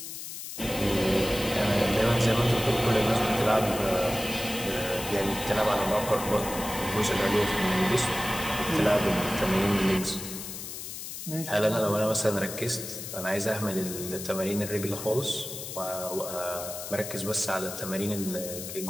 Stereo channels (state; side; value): noise; left; hiss, 9 dB below the sound